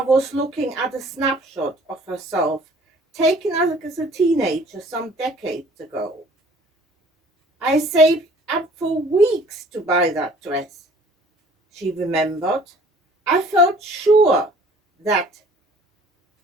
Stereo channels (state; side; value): normal; both; correlation 0.53